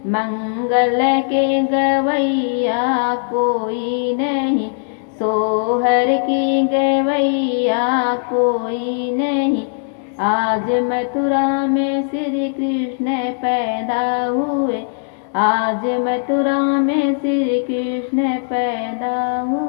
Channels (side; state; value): right; silent; digital silence